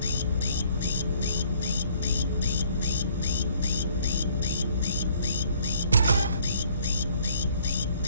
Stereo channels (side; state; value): both; inverted; correlation -0.59